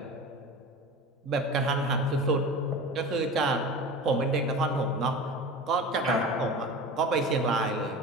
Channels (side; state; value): both; normal; correlation 0.33